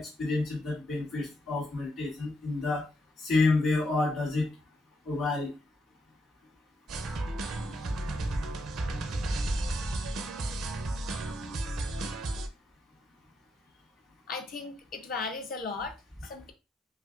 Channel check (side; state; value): both; normal; correlation 0.80